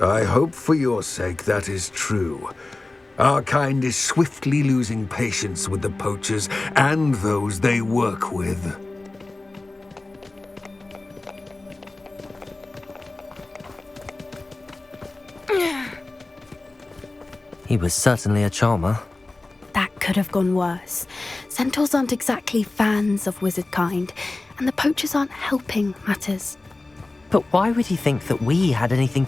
I hope for your sake that is true. Our kind is swiftly losing patience with the poachers and those they work with. He was certainly a charmer. That could have gone worse. Centaurs aren't exactly fans of wizard kind, and the poachers aren't helping matters. But why would he think that we had anything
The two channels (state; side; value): quieter; right; 3.1 dB